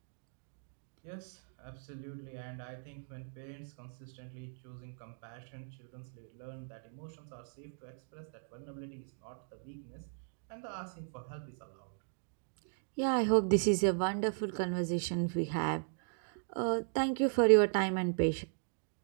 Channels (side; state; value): left; silent; digital silence